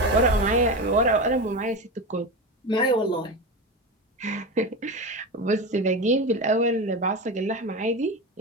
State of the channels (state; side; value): normal; both; correlation 0.21